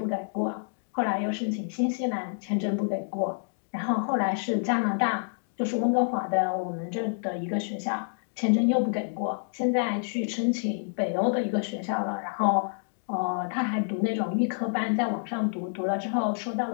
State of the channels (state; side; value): silent; right; digital silence